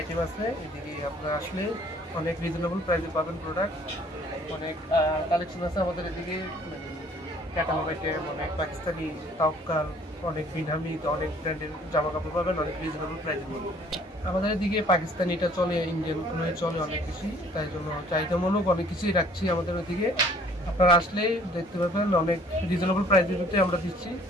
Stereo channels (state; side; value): normal; both; correlation 0.57